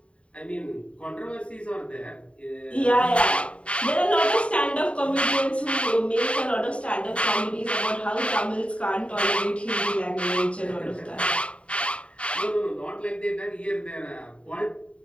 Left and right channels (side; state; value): right; late; 0.061 ms